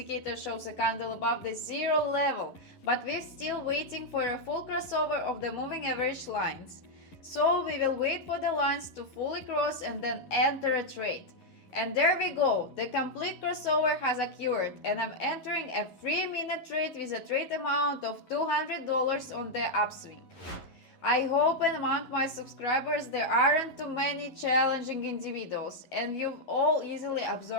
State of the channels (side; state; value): right; late; 11 ms